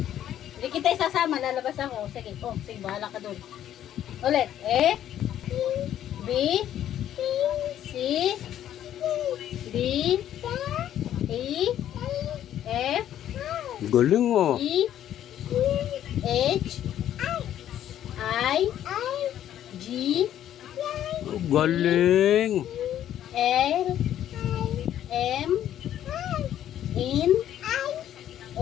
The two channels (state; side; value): quieter; right; 11.2 dB